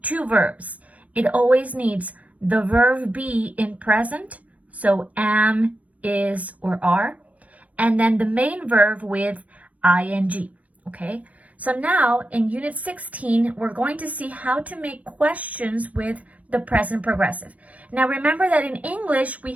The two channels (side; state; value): left; late; 0.068 ms